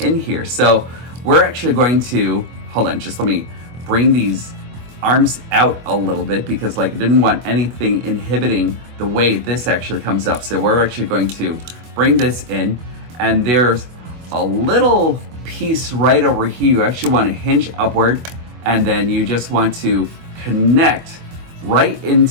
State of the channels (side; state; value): left; late; 24 ms